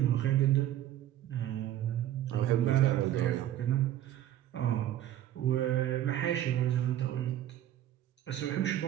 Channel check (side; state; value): left; quieter; 12.4 dB